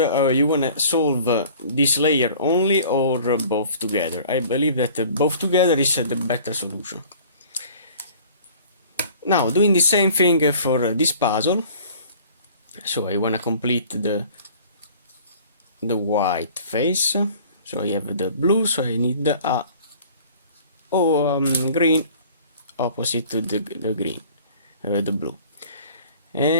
want to solve this layer only or both together. I believe that both together is the better solution. Now, doing the same thing for this puzzle. So I want to complete the white face. So I have the blue, so I need a green opposite to the green, the blue.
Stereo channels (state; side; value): inverted; both; correlation -0.48